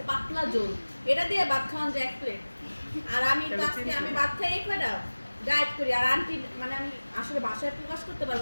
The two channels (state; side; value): inverted; both; correlation -1.00